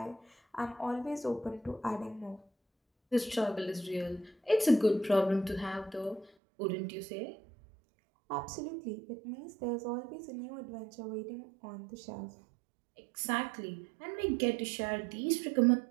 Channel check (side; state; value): left; drops out; at 6.3 s